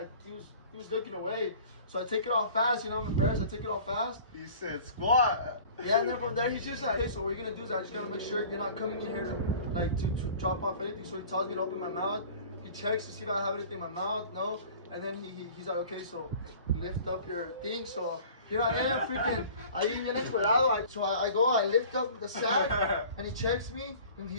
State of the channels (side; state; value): both; inverted; correlation -0.45